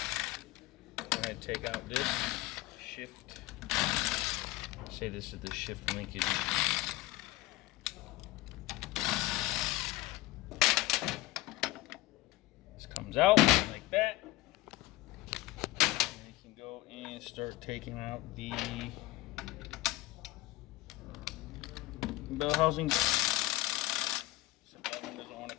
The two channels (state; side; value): quieter; right; 18.7 dB